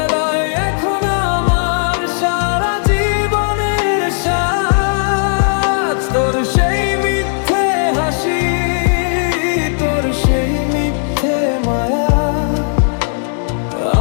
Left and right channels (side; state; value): right; silent; digital silence